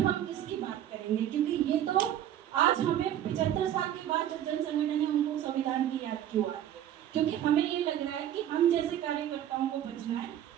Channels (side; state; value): left; quieter; 11.2 dB